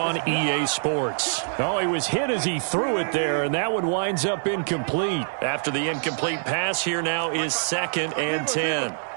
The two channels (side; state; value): left; silent; digital silence